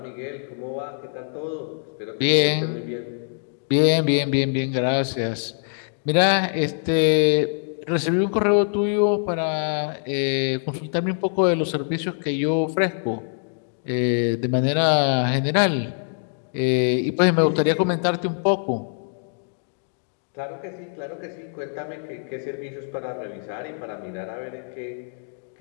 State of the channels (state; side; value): silent; right; digital silence